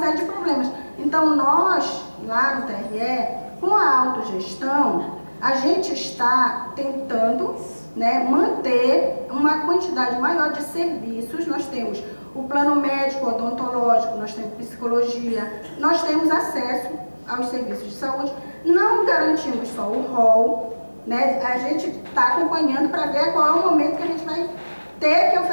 de problemas. Então nós, lá no TRE, com a autogestão, a gente está tentando, né, manter uma quantidade maior de serviços. Nós temos o plano médico, odontológico, nós temos psicologia, nós temos acesso aos serviços de saúde. Não garantimos só o rol, né? A gente está acompanhando para ver qual é o momento que a gente vai ter que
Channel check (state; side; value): inverted; both; correlation -1.00